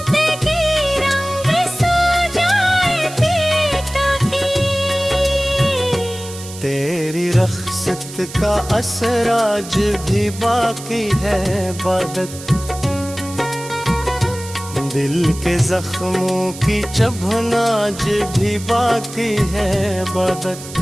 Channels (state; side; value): noise; right; hiss, 14 dB below the sound